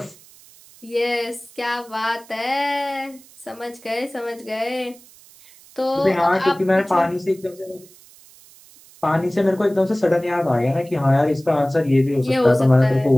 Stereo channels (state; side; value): noise; right; hiss, 24 dB below the sound